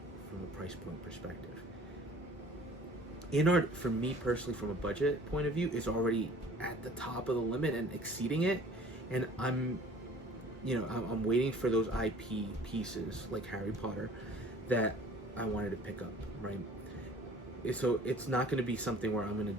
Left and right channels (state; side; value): normal; both; correlation 0.50